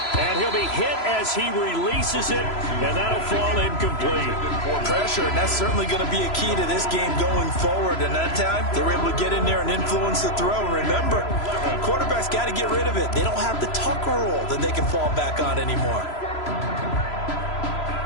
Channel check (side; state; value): right; late; 3.0 ms